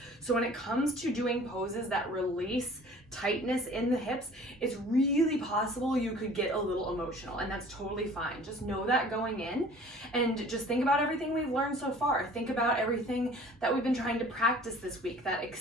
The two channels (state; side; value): normal; both; correlation 0.49